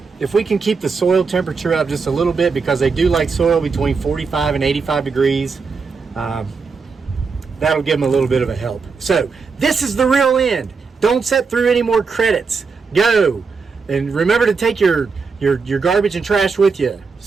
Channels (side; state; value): left; quieter; 4.9 dB